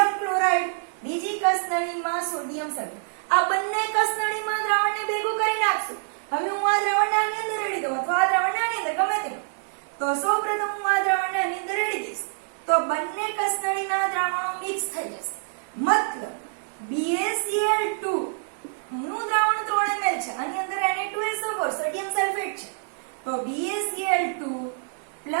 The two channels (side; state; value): left; silent; digital silence